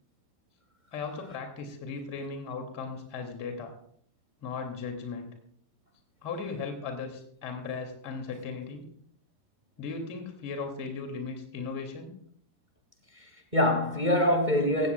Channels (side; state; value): left; late; 2.2 ms